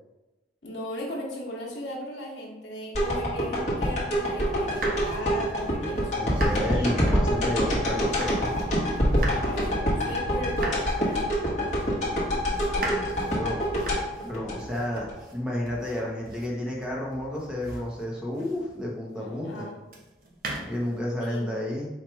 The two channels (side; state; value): both; normal; correlation 0.59